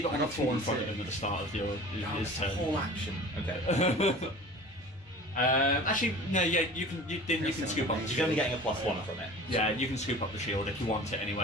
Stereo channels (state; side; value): normal; both; correlation 0.40